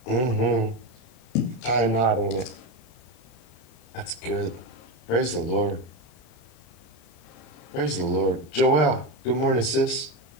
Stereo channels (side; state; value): right; late; 32 ms